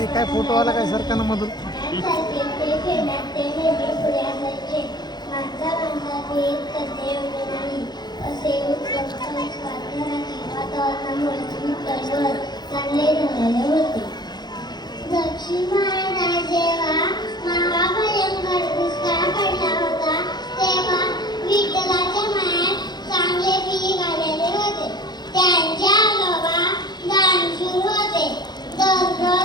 काय फोटो आला काय सरकारनं मधून. दक्षिण भारतात जेव्हा महाभयंकर दुष्काळ पडला होता तेव्हा विठ्ठलाच्या मायात चांगले पीक आलेले होते. त्यांच्या आजोबा दानशूर होते.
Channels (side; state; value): right; late; 0.20 ms